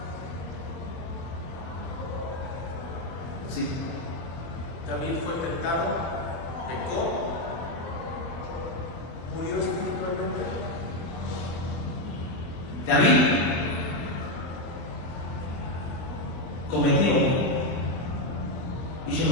Sí. David fue tentado, pecó, murió espiritualmente. David cometió, hizo lo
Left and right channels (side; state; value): right; late; 24 ms